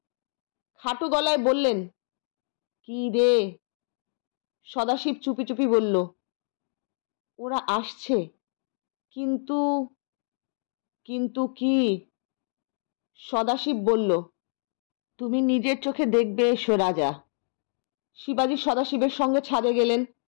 খাটো গলায় বললেন, কি রে? সদাশিব চুপি চুপি বলল, ওরা আসছে, কিন্তু কিন্তু কি? সদাশিব বলল, তুমি নিজের চোখে দেখবে এসো রাজা। শিবাজি সদাশিবের সঙ্গে ছাদে গেলেন।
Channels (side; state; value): right; silent; digital silence